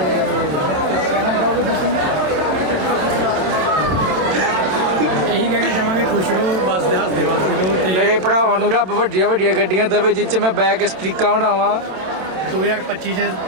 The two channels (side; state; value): left; late; 27 ms